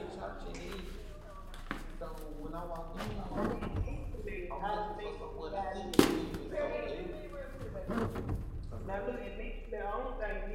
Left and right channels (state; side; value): identical; both; correlation 1.00